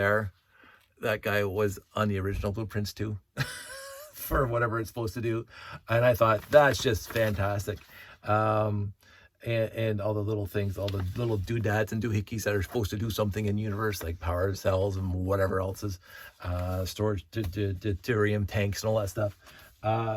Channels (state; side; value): identical; both; correlation 1.00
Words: guy was on the original blueprints too, for whatever it's supposed to do, and I thought that's just fantastic. And all the little things, all the little doodads and doohickeys that are supposed to do something in the universe, like power cells and whatever else is, storage, deuterium tanks and all that stuff,